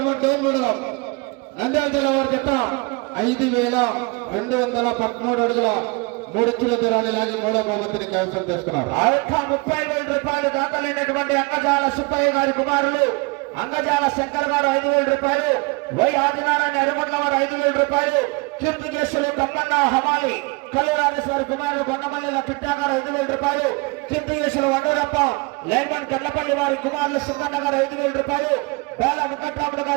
డోన్ మండలం, నంద్యాల జిల్లా వారి జత 5,213 అడుగుల 3 ఇంచుల దూరాన్ని లాగి మూడవ బహుమతిని కైవసం చేసుకున్నారు. ఆ యొక్క 30,000 రూపాయలు దాఖలైనటువంటి అంగజాల సుబ్బయ్య గారి కుమారులు అంగజాల శంకర్ గారు 5,000 రూపాయలు, వై ఆదినారాయణ ఎరుమట్ల వారు 5,000 రూపాయలు, కీర్తికేశులు తమ్మన్న హమాలి కల్లూరాజేశ్వరి కుమారులు కొండమల్లి కిట్టా గారు 5,000 రూపాయలు, కీర్తికేశులు వండరప్ప లైన్మన్ కెర్లపల్లి వారి కుమారులు సుందన్న గారు 5,000 రూపాయలు, బేల వెంకట్రాముడు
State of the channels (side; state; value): left; quieter; 27.7 dB